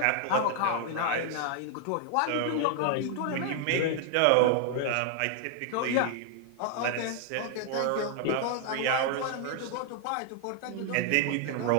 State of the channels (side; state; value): both; different; correlation 0.00